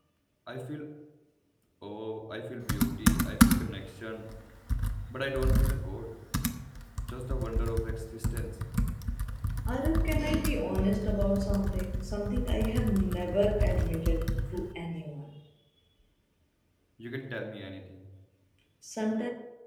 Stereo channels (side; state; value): both; identical; correlation 1.00